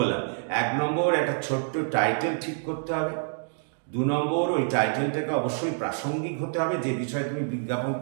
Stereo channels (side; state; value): left; silent; digital silence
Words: 1 নম্বর একটা ছোট্ট টাইটেল ঠিক করতে হবে। 2 নম্বর ওই টাইটেলটাকে অবশ্যই প্রাসঙ্গিক হতে হবে, যে বিষয়ে তুমি বিজ্ঞাপন